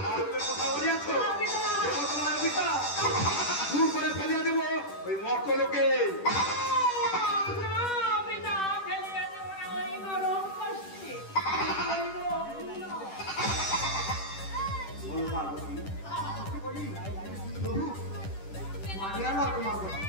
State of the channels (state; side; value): late; right; 10 ms